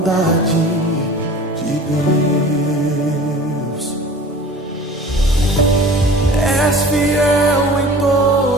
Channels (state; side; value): normal; both; correlation 0.42